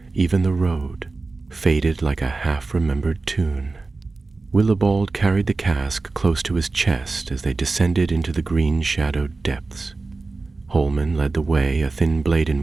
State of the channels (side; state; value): left; quieter; 3.7 dB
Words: even the road, faded like a half-remembered tune. Willibald carried the cask close to his chest as they descended into the green-shadowed depths. Holman led the way, a thin blade